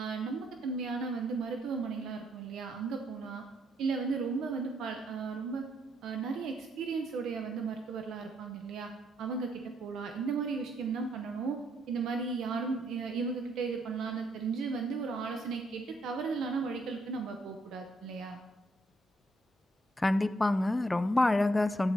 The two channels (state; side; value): normal; both; correlation 0.74